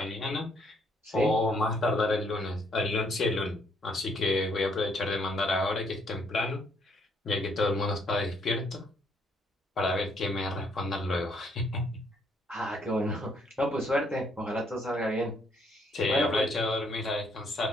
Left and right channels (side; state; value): both; normal; correlation 0.69